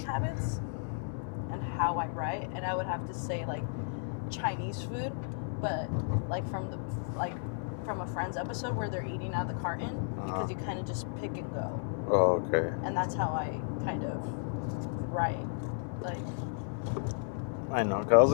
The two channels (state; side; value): silent; right; digital silence